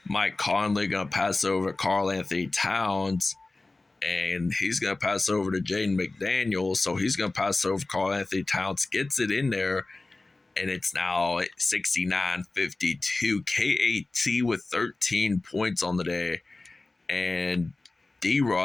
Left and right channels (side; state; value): right; quieter; 3.2 dB